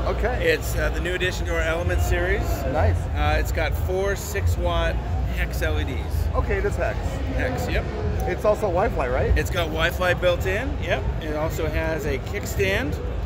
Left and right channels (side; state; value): both; identical; correlation 1.00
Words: Okay. It's the new addition to our Element series. Nice. It's got 4 6-watt hex LEDs. Okay, it is hex. Hex, yep. It's also Wi-Fi, right? It's got Wi-Fi built in. Yep. It also has a kickstand.